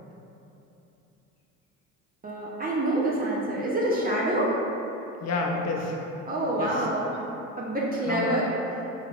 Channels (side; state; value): both; normal; correlation 0.17